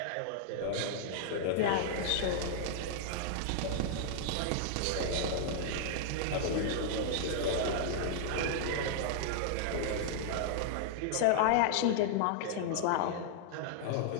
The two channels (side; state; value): both; different; correlation -0.01